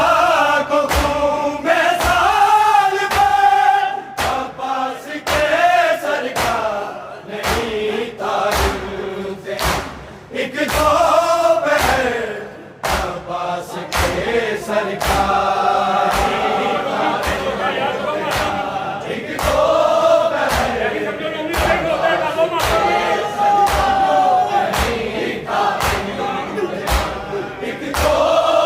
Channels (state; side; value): identical; both; correlation 1.00